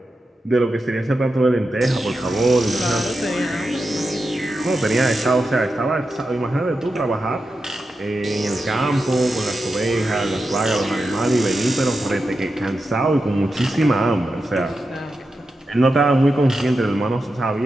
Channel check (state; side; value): normal; both; correlation 0.89